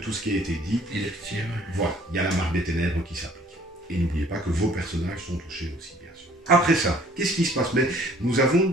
ce qui a été dit, il est petit, ouais. Voilà, il y a la marque des ténèbres qui s'applique. Et n'oubliez pas que vos personnages sont touchés aussi, bien sûr. Après ça, qu'est-ce qui se passe? Mais nous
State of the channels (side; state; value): both; normal; correlation 0.56